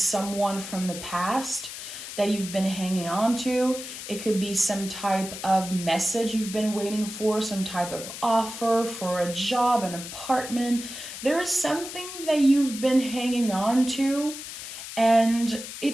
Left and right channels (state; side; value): noise; left; hiss, 10 dB below the sound